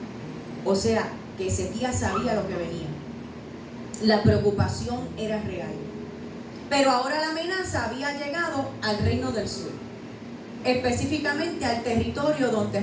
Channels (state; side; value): identical; both; correlation 1.00